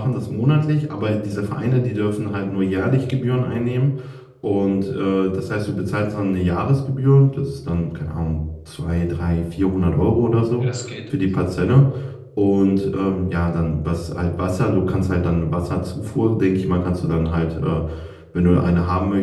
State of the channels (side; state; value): both; identical; correlation 1.00